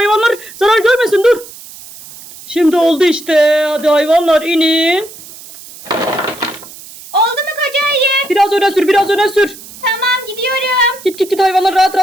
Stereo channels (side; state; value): right; noise; hiss, 17 dB below the sound